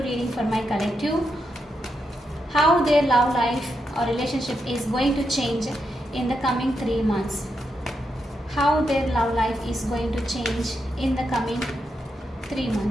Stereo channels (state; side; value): normal; both; correlation 0.84